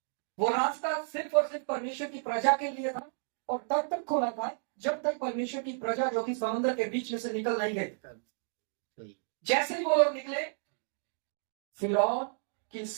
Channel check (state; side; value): silent; left; digital silence